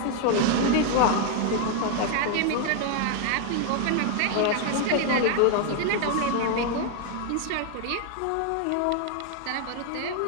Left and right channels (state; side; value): different; both; correlation 0.00